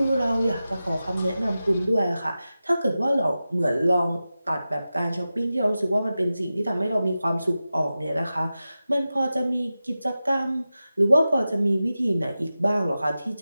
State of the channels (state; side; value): inverted; both; correlation -0.94